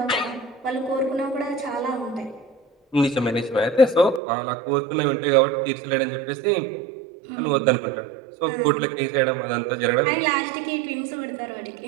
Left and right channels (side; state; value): left; drops out; at 4.2 s